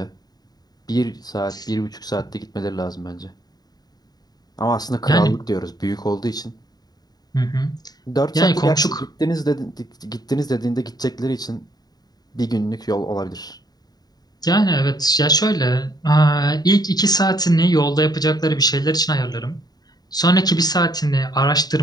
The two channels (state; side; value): late; right; 0.19 ms